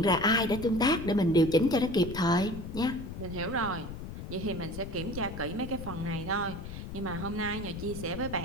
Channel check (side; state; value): left; noise; rumble, 9 dB below the sound